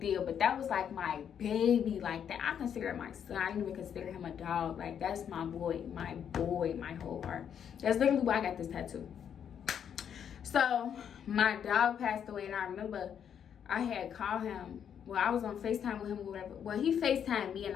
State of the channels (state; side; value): quieter; right; 8.4 dB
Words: but that was like my baby, like that. I consider him my son. I didn't even consider him a dog. Like, that's my boy, my whole heart. That's literally why I got this tattoo. So my dog passed away, and I remember I had called him. Well, I was on FaceTime with him or whatever. Well, he FaceTimed me, and